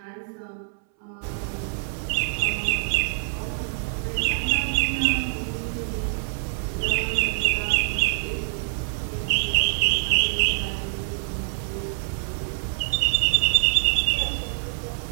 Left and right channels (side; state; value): left; silent; 62 dB below the other